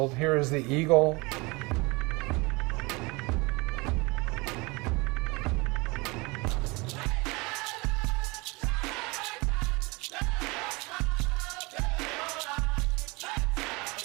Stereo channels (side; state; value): left; quieter; 25.7 dB